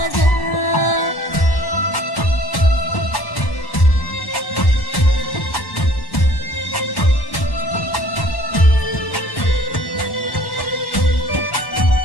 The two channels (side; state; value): right; late; 1.1 ms